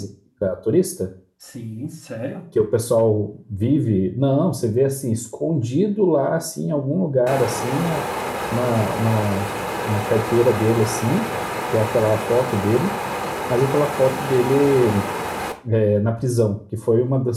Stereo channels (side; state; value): both; identical; correlation 1.00